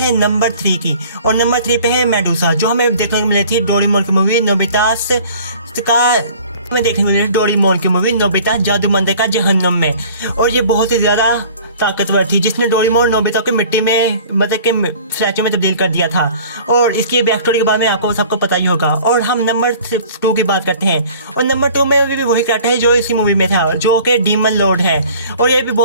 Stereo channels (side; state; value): both; inverted; correlation -0.48